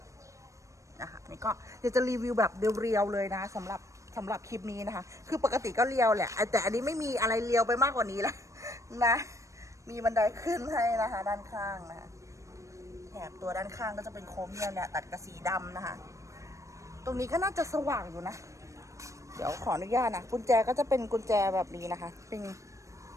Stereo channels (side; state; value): left; late; 0.15 ms